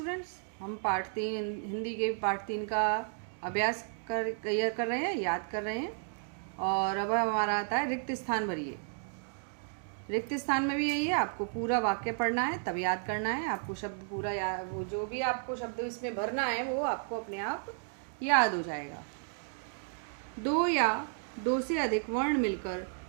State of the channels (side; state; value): left; silent; 56 dB below the other